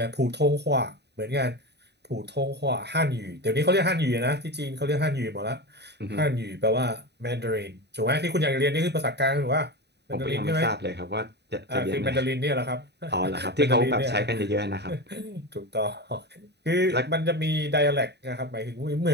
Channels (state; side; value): late; left; 0.49 ms